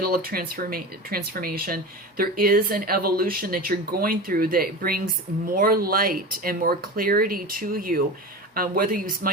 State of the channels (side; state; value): both; normal; correlation 0.29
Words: of transformation. There is an evolution that you're going through that brings more light and more clarity to you, whether you